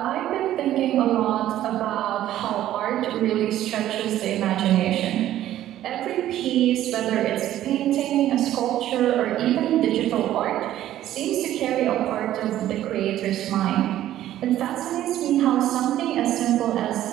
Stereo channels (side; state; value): left; quieter; 12.9 dB